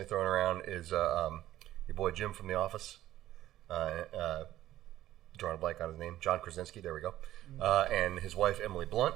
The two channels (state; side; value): quieter; left; 13.9 dB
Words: thrown around is your boy Jim from The Office. Drawing a blank on his name, John Krasinski. There we go. And his wife Emily